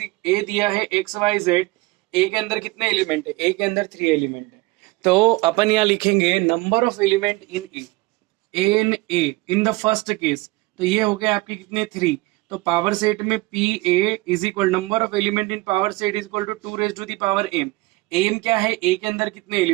ए दिया है एक्स वाई जेड, ए के अंदर कितने एलिमेंट है? ए के अंदर 3 एलिमेंट है। तो अपन यहाँ लिखेंगे number of element in A in the first case. तो ये हो गया आपके कितने 3। तो पावर सेट में P A is equal number of element in power set is equal to 2 raise to the power M. M क्या है? ए के अंदर कितने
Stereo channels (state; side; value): quieter; left; 21.9 dB